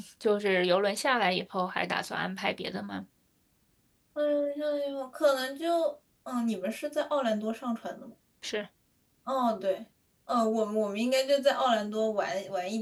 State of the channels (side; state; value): both; identical; correlation 1.00